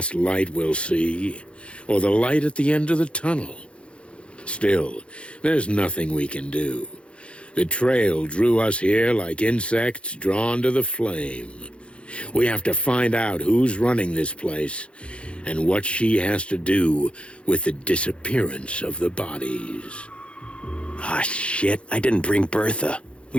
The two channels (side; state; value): right; late; 0.059 ms